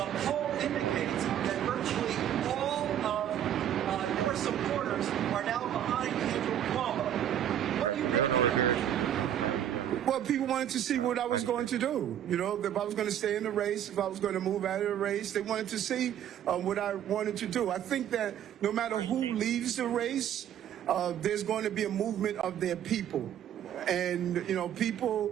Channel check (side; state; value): left; quieter; 10.5 dB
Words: poll indicates that virtually all of your supporters are now behind Andrew Cuomo. What do you make of that? Well, people wanted to see what I was going to do. You know, if I was going to stay in the race, if I was going to move out of the race, they wanted to see what I wanted to do. I think that no matter who leaves the race, there's going to be a movement of their people. And,